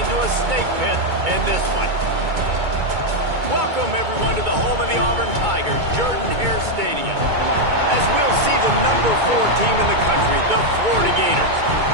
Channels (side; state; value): left; late; 2.2 ms